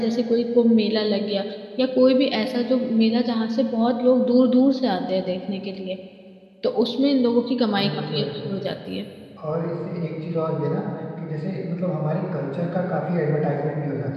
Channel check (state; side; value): identical; both; correlation 1.00